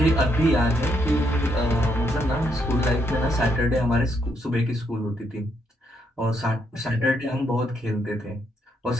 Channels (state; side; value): normal; both; correlation 0.75